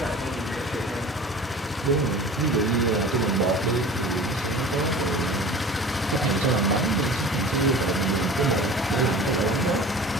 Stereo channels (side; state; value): both; normal; correlation 0.40